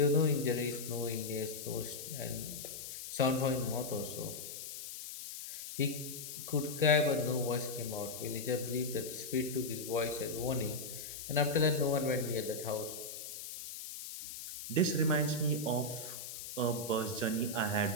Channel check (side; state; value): left; noise; hiss, 9 dB below the sound